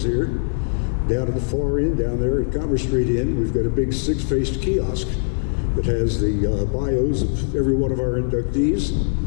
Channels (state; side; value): silent; right; digital silence